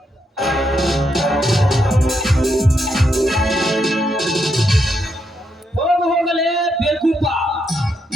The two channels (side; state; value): both; normal; correlation 0.80